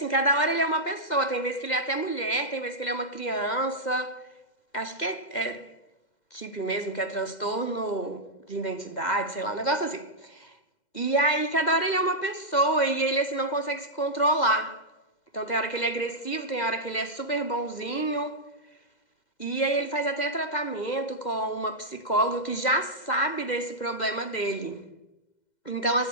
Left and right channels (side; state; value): right; late; 2.0 ms